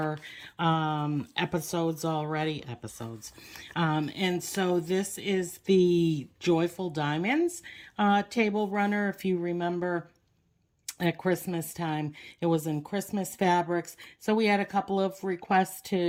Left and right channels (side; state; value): both; identical; correlation 1.00